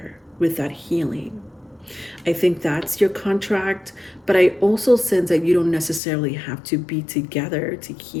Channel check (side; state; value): right; drops out; at 6.0 s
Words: with that healing. I think that's your contract, but I also sense that you don't necessarily have to be together to